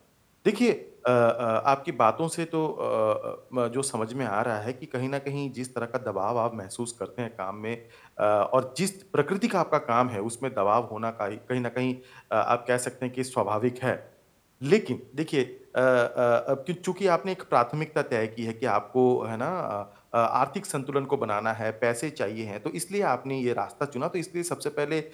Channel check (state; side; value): identical; both; correlation 1.00